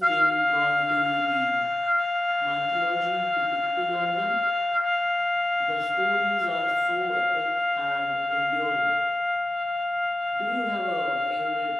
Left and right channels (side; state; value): both; normal; correlation 0.95